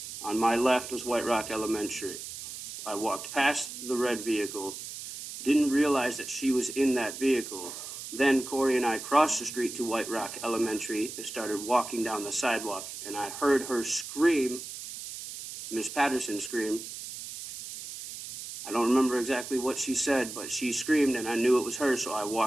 On my left was White Rock Elementary. I walked past the red vehicle, didn't realize that she was in that vehicle. Then Kori and I crossed the street to White Rock Elementary and started walking down the sidewalk, and I heard her scream, Miss Patterson scream. I don't remember exactly what she said, but she screamed and I knew it was her, so I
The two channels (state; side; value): noise; right; hiss, 10 dB below the sound